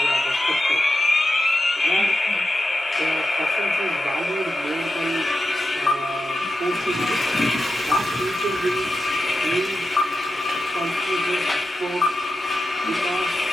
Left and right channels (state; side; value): normal; both; correlation 0.90